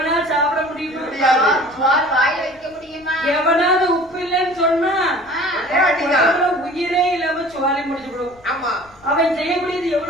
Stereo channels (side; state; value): left; noise; rumble, 28 dB below the sound